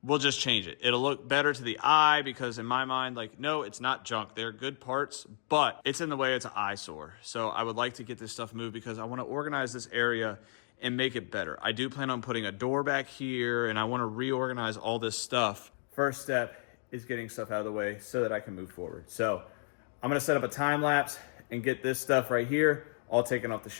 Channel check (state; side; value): silent; right; digital silence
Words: we'll just change it. It'll look better to the eye because in my mind, like, no, it's not junk. They're good parts, but it's in the way. It's an eyesore. So I would like to get this stuff moved because I want to organize this area and make it better. I do plan on putting a door back here and I want to reorganize all this stuff. First step is getting stuff out of the way so that I can move forward. So I'm going to set up a time lapse and get this stuff right here all taken off the